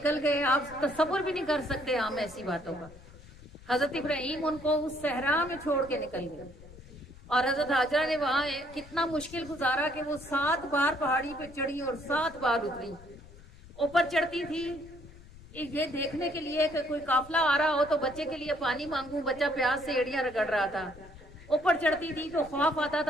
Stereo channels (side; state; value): left; noise; rumble, 20 dB below the sound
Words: گئے، آپ تصور بھی نہیں کر سکتے ہم ایسی باتوں کا۔ حضرت ابراہیم ان کو اس صحرا میں چھوڑ کے نکل گئے، اور حضرت ہاجرہ نے وہاں کتنا مشکل گزارا کہ وہ 7 بار پہاڑی پہ چڑھی اور 7 بار اتری۔ اوپر چڑھتی تھی یہ دیکھنے کے لیے کہ کوئی قافلہ آ رہا ہو تو بچے کے لیے پانی مانگوں، بچہ پیاس سے ایڑیاں رگڑ رہا تھا۔ اوپر چڑھتی تھی تو خوف آتا